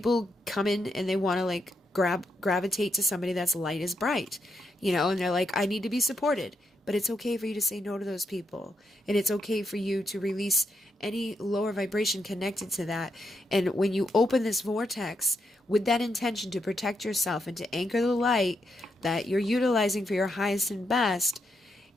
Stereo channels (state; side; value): normal; both; correlation 0.81